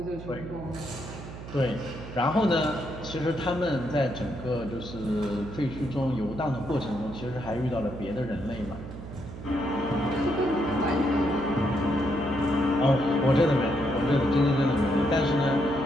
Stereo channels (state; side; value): noise; right; hum, 12 dB below the sound